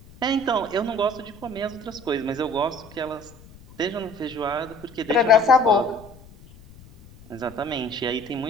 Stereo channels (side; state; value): left; noise; rumble, 21 dB below the sound